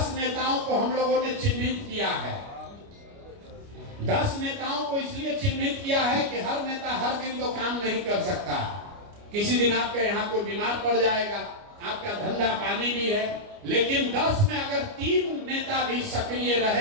नेताओं को हम लोगों ने चिन्हित किया है। 10 नेताओं को इसलिए चिन्हित किया है कि हर नेता हर दिन तो काम नहीं कर सकता। किसी दिन आपके यहाँ कोई बीमार पड़ जाएगा, आपका धंधा पानी भी है, लेकिन 10 में अगर 3 नेता भी सक्रिय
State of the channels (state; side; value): late; left; 29 ms